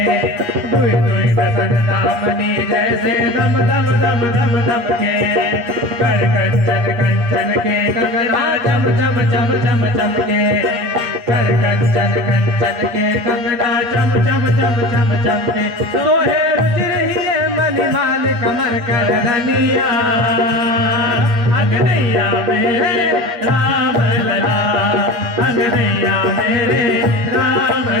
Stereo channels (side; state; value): left; late; 8.3 ms